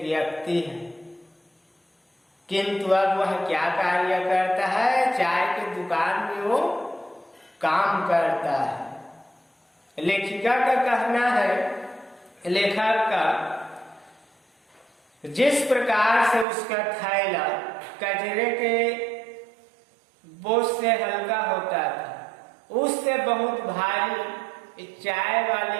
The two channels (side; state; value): left; drops out; at 16.4 s